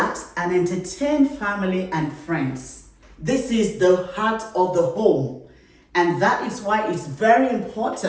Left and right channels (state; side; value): identical; both; correlation 1.00